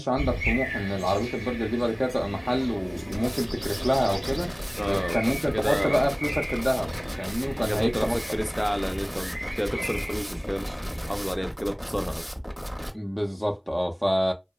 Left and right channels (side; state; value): both; identical; correlation 1.00